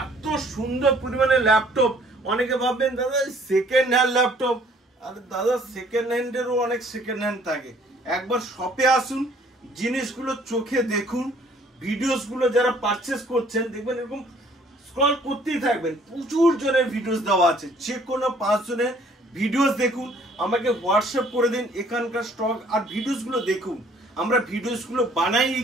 এত সুন্দর পরিমাণে ল্যাপটপ, অনেকে ভাববেন দাদা সেকেন্ড হ্যান্ড ল্যাপটপ, আরে দাদা সেকেন্ড হ্যান্ডেরও অনেক সেকেন্ড হ্যান্ড থাকে। একবার শপে আসুন, জিনিসগুলো চোখে দেখুন, ভিডিওস গুলো যারা পারচেস করছেন দেখবেন এরকম স্ক্রল করতেই থাকবেন, প্রচুর জনের ভিডিওস দেওয়া আছে, যে কোনো 5 জনের ভিডিওস দেখুন, আমাকে হোয়াটসঅ্যাপ করে দিন এখানকার স্টক আর ভিডিওস গুলো দেখুন। আমরা ভিডিওস গুলো বানাই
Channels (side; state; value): both; normal; correlation 0.58